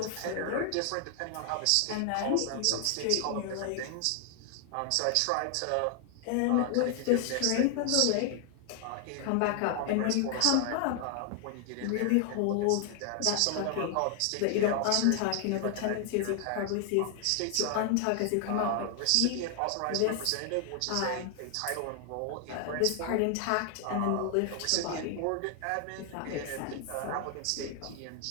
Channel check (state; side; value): different; both; correlation 0.00